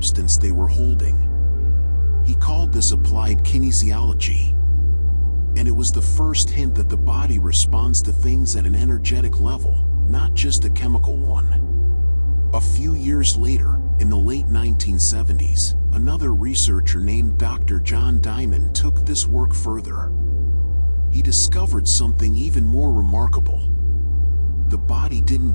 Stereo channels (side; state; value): both; inverted; correlation -1.00